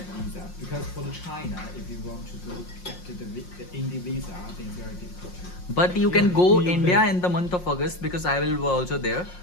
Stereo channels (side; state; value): right; late; 5.6 ms